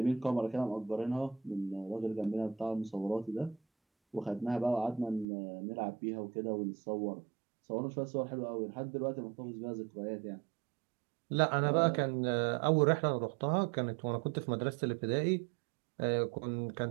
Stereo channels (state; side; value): drops out; left; at 5.2 s